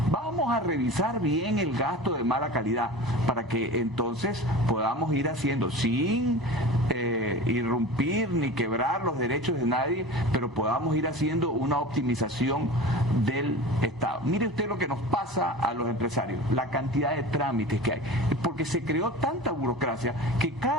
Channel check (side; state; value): both; normal; correlation 0.34